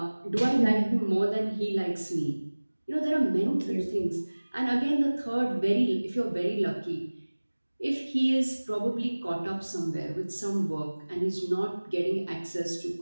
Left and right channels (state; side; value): inverted; both; correlation -1.00